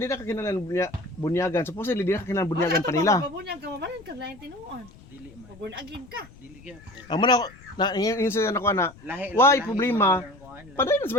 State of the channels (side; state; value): left; noise; rumble, 22 dB below the sound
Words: na kakinalan bunyagan. Supposedly di na kakinalan bunyagan pa nila. Bunyag ka mabalan ka lain tinuon. Dili man. Pabun agin ka. Dili gyud. Amo na na insa na ko na. Lahi. Why problema? Paday na sa